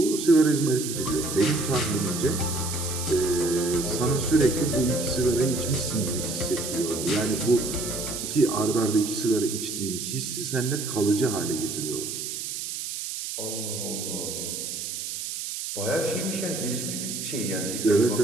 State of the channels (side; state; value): right; noise; hiss, 5 dB below the sound